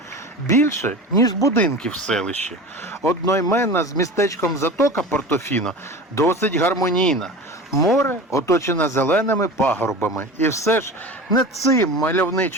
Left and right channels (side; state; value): both; normal; correlation 0.33